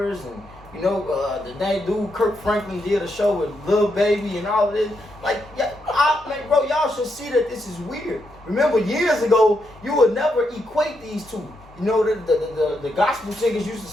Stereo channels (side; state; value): both; normal; correlation 0.81